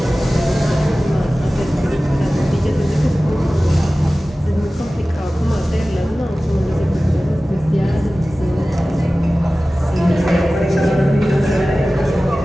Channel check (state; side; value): normal; both; correlation 0.97